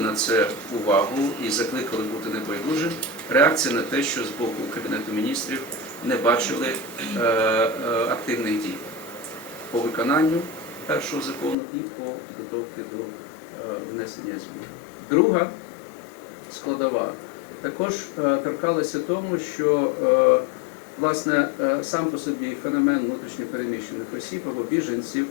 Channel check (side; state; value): right; drops out; at 11.6 s